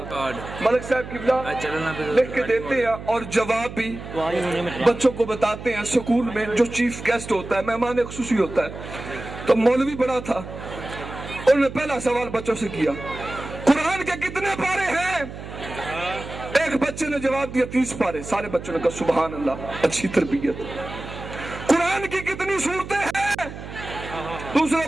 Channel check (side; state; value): right; noise; hum, 11 dB below the sound